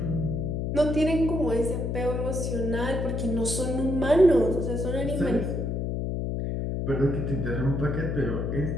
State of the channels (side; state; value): left; noise; hum, 1 dB below the sound